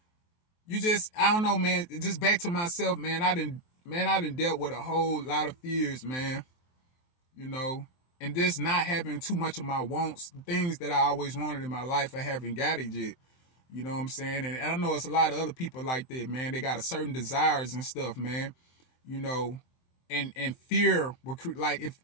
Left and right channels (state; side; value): late; right; 23 ms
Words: don't know, man. Just back to myself, man. I done dealt with a whole lot of fears, man. And just not having too much of my wants, things that I always wanted in my life, I haven't got it yet. You know what I'm saying? And I know it's a lot of other people like that, man. They got a certain desires and stuff, man. And fear will, like, if